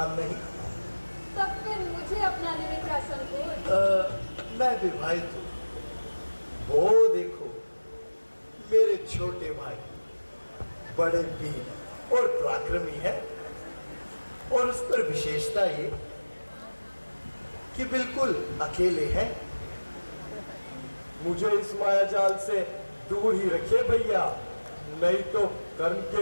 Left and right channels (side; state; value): both; inverted; correlation -1.00